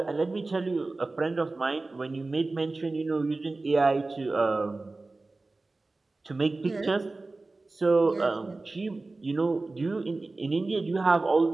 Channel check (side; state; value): left; quieter; 3.3 dB